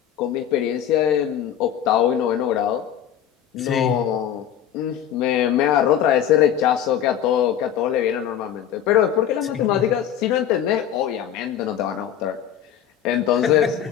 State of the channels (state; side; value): quieter; right; 9.9 dB